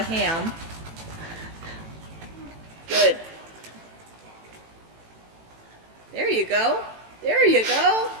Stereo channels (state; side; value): late; left; 18 ms